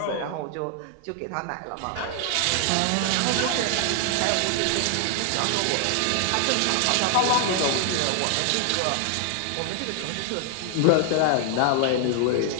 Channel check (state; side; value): different; both; correlation 0.00